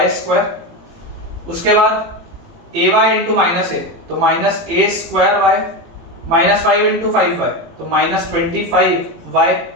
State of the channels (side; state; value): left; late; 18 ms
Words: स्क्वायर, उसके बाद ay इंटू माइनस a तो minus a square y, minus 5 into 5y तो माइनस 25y,